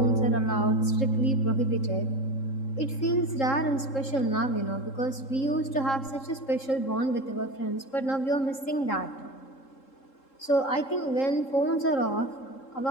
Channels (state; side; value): late; right; 3.7 ms